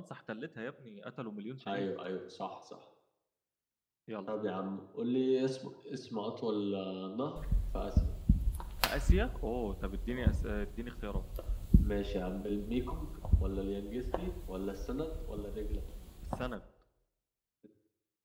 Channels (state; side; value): identical; both; correlation 1.00